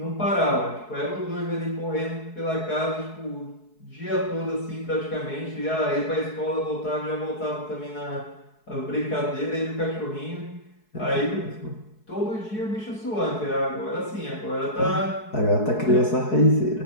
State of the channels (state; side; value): late; right; 4.7 ms